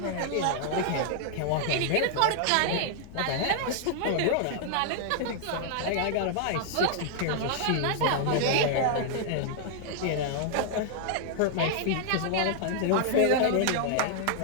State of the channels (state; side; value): different; both; correlation 0.00